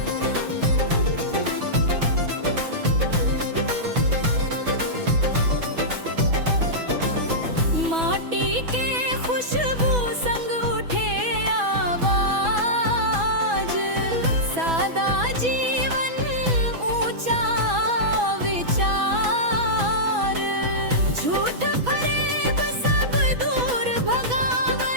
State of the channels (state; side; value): late; left; 6.1 ms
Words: माटी के खुशबू संग उठे आवाज, सादा जीवन ऊंचा विचार। झूठ फरेब सब दूर